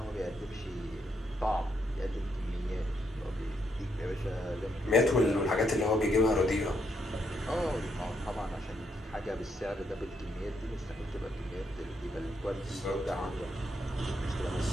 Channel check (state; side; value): normal; both; correlation 0.77